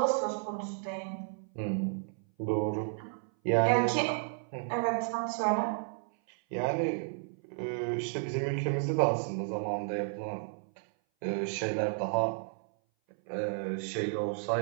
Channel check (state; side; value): silent; left; 56 dB below the other